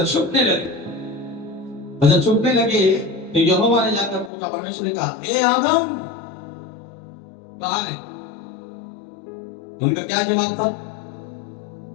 छुपने लगे। और जब छुपने लगे तो यहोवा ने जाकर पूछा, परमेश्वर ने कहा, हे आदम कहाँ है? उनका क्या जवाब था?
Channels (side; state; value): right; drops out; at 4.3 s